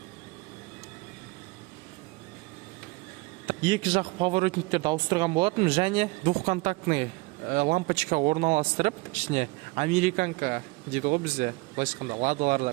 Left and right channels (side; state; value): left; quieter; 25.0 dB